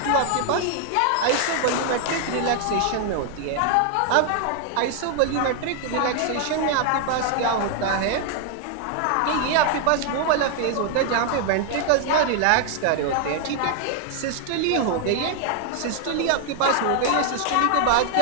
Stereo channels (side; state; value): both; different; correlation 0.00